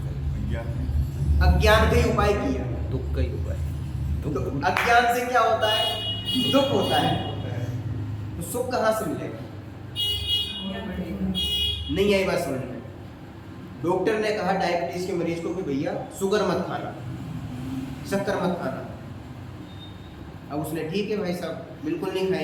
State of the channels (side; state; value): both; identical; correlation 1.00